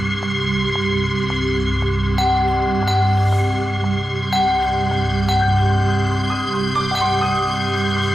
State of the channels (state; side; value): normal; both; correlation 0.91